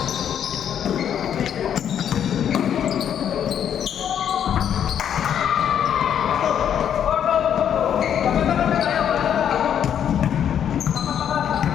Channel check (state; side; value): quieter; right; 9.1 dB